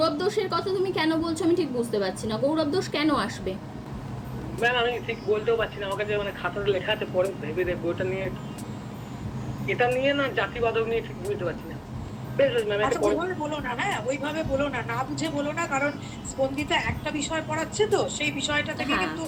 দোষের কথা তুমি কেন বলছো আমি ঠিক বুঝতে পারছি না, গৌরব দোষ কেন আসবে? ম্যাম আমি ঠিক বলতেও পারছি না, আমার কাছে মানে খাতাতে লেখা আছে, পরে ভেবে দেখবো ওটা নিয়ে, এটা নিয়ে না জাতিবাদক নিয়ে ঠিক বুঝতে পারছি না। বেশ বেশ ম্যাম, আচ্ছা ওইভাবে বলো না, হ্যাঁ ওইভাবে বলো না, না বুঝে বলো না, কারণ স্পন্দিতা একটা বিষয় পড়াচ্ছে তো সেই বিষয়টা থেকে হ্যাঁ। কিন্তু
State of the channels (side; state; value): both; identical; correlation 1.00